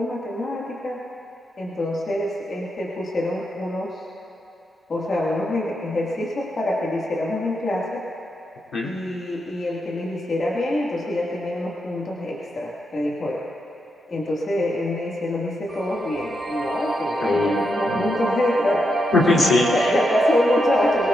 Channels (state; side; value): normal; both; correlation 0.83